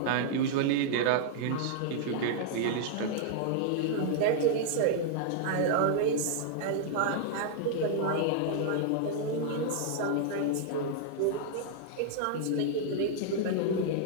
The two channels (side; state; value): both; different; correlation -0.01